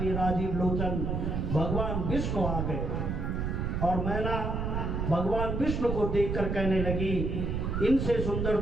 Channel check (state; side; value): noise; right; rumble, 1 dB below the sound